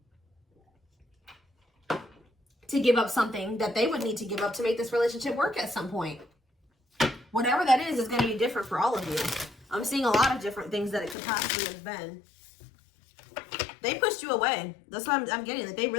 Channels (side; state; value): right; drops out; at 11.2 s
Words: to give up something that they would need to give up to make this relationship work at some point. Whatever that is going to be different for all of you. I'm seeing a lot of different things that it could possibly have been. They pushed you away. That's what I'm getting. That they